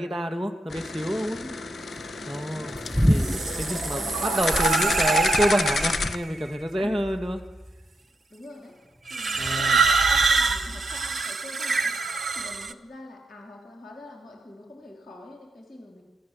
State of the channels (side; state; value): both; normal; correlation 0.83